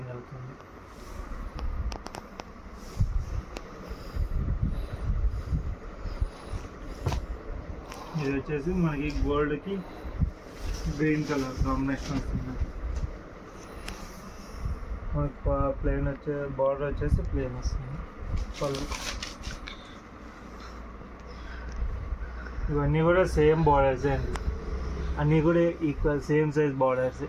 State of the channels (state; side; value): identical; both; correlation 1.00